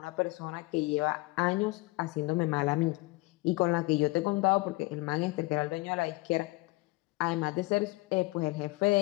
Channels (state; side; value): quieter; right; 23.0 dB